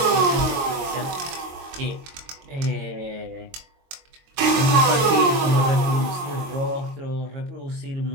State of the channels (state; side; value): late; left; 22 ms